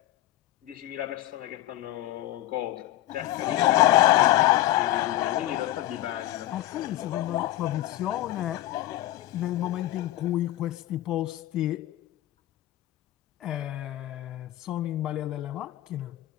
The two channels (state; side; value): quieter; right; 14.9 dB